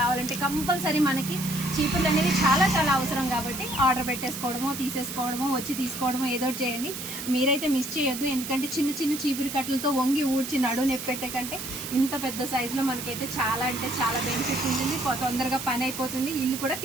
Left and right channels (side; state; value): right; noise; hiss, 7 dB below the sound